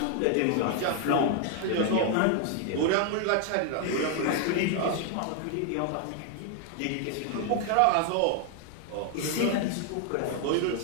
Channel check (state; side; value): different; both; correlation 0.00